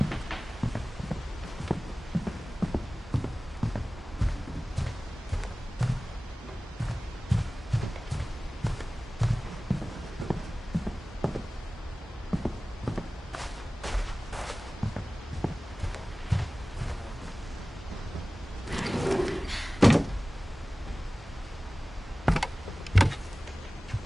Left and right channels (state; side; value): normal; both; correlation 0.98